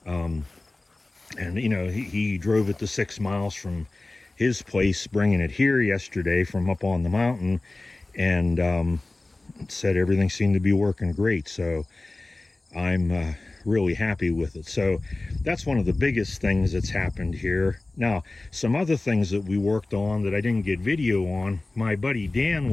and he drove it the 6 miles from his place, bringing it here yesterday from up on the mountain, and said everything seemed to be working great. So I'm really happy with it. So that's one of the biggest things that's happened here. Now, some other things that we worked on that I didn't get video on, my buddy Dan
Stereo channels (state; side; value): quieter; right; 3.0 dB